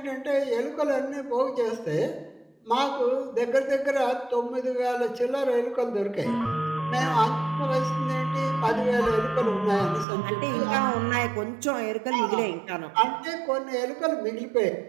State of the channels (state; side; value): drops out; left; at 10.1 s